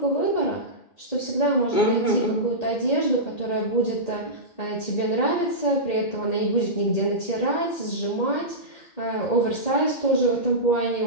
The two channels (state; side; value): late; right; 2.1 ms